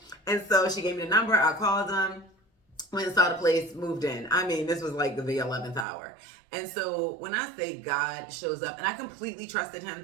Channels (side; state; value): left; drops out; at 5.9 s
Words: And so she gave me the number. I called them, went and saw the place, moved in. I mean, this was like the 11th hour. And so when I say God shows up, and I completely trusted